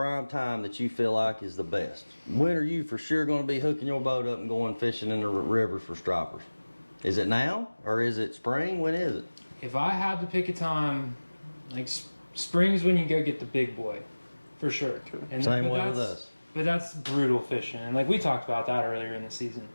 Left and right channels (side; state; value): both; inverted; correlation -1.00